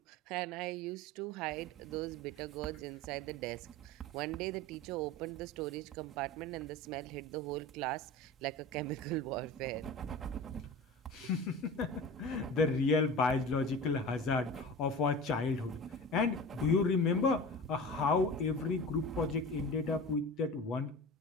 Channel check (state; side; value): normal; both; correlation 0.34